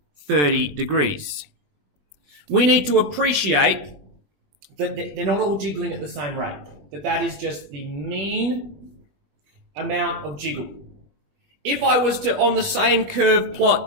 30 degrees. We need to appreciate that they're not all jiggling at the same rate, that is just the mean amount of jiggle. If I was to, on the same curve,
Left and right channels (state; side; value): late; left; 20 ms